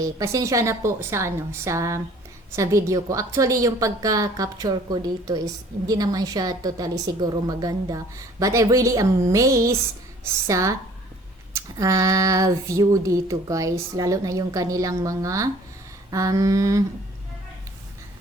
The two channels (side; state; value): both; normal; correlation 0.53